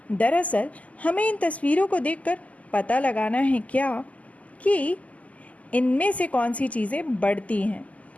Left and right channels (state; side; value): late; right; 0.072 ms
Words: दरअसल हमें इन तस्वीरों को देखकर पता लगाना है क्या कि इनमें से कौन सी चीज़ें बढ़ती हैं,